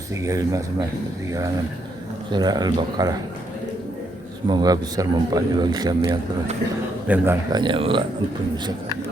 sampai 136 surah Al-Baqarah. Semoga besar manfaatnya bagi kami yang telah mendengarkannya. Allah ampun dosa kami.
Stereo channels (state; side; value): normal; both; correlation 0.76